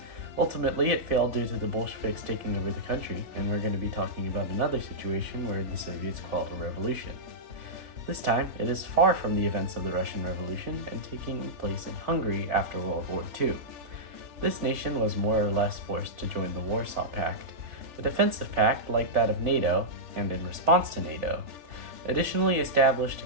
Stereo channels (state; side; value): late; left; 3.4 ms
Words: Ultimately, it failed due to the Bolsheviks taking over the country, and we're going to be talking about another situation where the Soviets quelled a revolution. This time, it is far from the events of the Russian Revolution and taking place in Hungary after World War II. This nation was more or less forced to join the Warsaw Pact, a defensive pact like that of NATO, and in response to NATO. Additionally established to